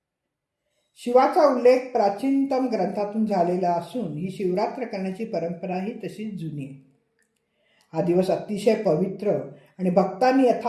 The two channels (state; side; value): identical; both; correlation 1.00